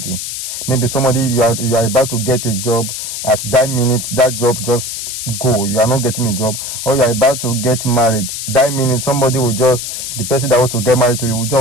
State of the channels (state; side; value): noise; left; hiss, 5 dB below the sound